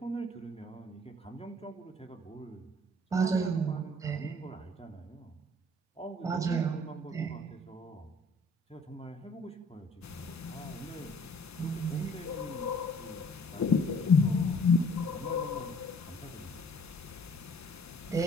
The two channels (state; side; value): normal; both; correlation 0.56